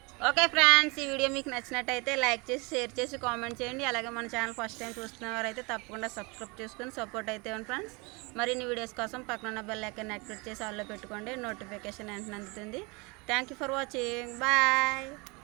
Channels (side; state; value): left; quieter; 28.2 dB